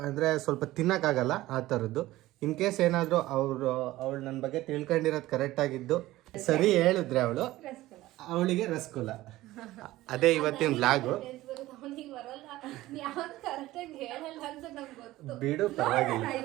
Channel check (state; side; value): quieter; left; 16.9 dB